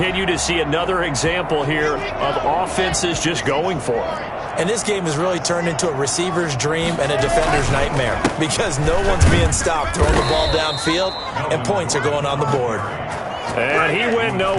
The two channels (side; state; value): both; identical; correlation 1.00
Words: to see another example here of offenses just going for it. And this game has really turned into a receiver's dream and a defender's nightmare because no one's being stopped throwing the ball downfield, and points are going on the board. And he went